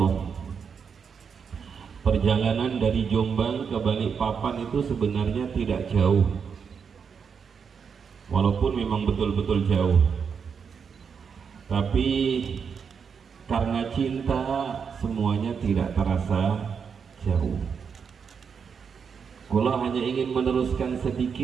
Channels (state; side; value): quieter; left; 6.4 dB